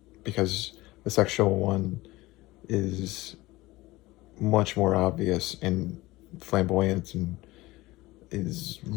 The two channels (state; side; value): quieter; right; 19.5 dB